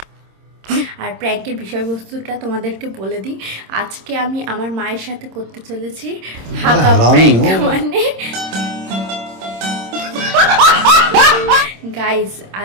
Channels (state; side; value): late; left; 26 ms